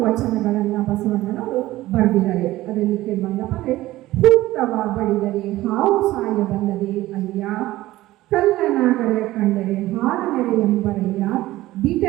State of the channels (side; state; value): left; quieter; 16.6 dB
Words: ವಚನಗಳನ್ನು ಬಸವಣ್ಣನವರು ಬರೆದಿದ್ದಾರೆ. ಅದರಲ್ಲಿ ಕೆಲವೊಂದಪ್ಪ ಅಂದರೆ, ಹುತ್ತವ ಬಡಿದರೆ ಹಾವು ಸಾಯಬಲ್ಲದೆ ಅಯ್ಯ, ಕಲ್ಲನಾಗರ ಕಂಡರೆ ಹಾರನೆರೆ ಎಂಬರಯ್ಯ,